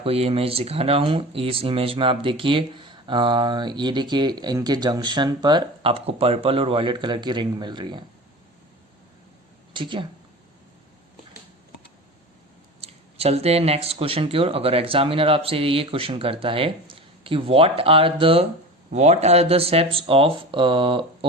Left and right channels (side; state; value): both; normal; correlation 0.33